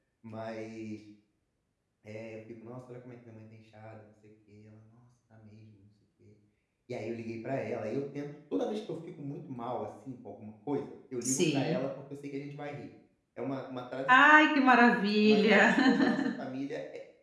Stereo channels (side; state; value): both; identical; correlation 1.00